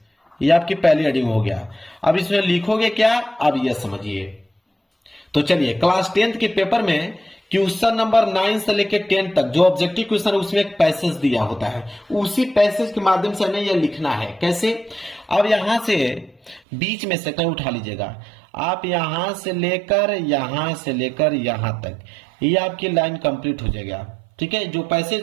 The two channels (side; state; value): left; drops out; at 16.6 s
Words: ये आपकी पहली हेडिंग हो गया। अब इसमें लिखोगे क्या, अब ये समझिए। तो चलिए क्लास 10th के पेपर में क्वेश्चन नंबर 9 से लेकर 10 तक जो ऑब्जेक्टिव क्वेश्चन है उसमें एक पैसेज दिया होता है, उसी पैसेज के माध्यम से हमें यह लिखना है। कैसे, अब यहां से बीच में से कहीं उठा लीजिएगा, आप यहां से लेकर यहां तक, ये आपकी लाइन कंप्लीट हो जाएगा, ठीक है। जो पैसेज